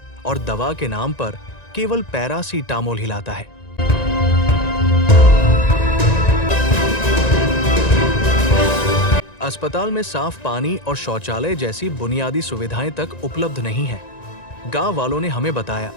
और दवा के नाम पर केवल पैरासीटामोल हिलाता है। अस्पताल में साफ पानी और शौचालय जैसी बुनियादी सुविधाएं तक उपलब्ध नहीं है। गांव वालों ने हमें बताया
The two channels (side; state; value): right; late; 1.9 ms